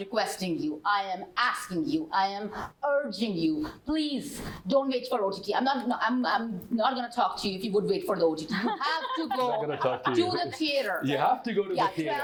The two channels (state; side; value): identical; both; correlation 1.00